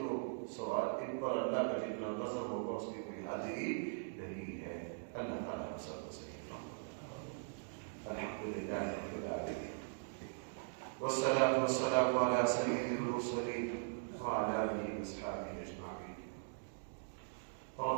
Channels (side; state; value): left; silent; digital silence